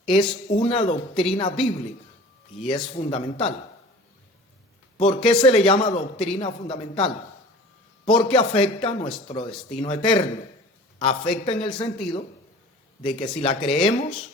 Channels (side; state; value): both; normal; correlation 0.42